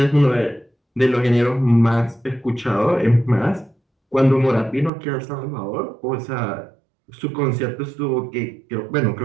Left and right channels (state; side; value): drops out; left; at 4.9 s